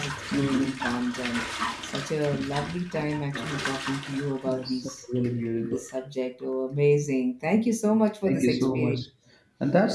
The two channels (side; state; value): both; identical; correlation 1.00